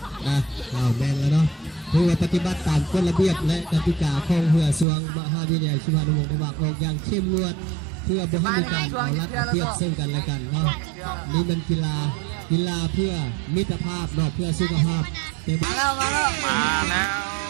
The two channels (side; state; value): left; drops out; at 4.9 s